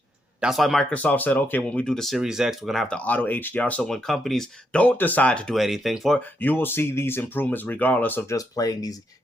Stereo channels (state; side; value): normal; both; correlation 0.79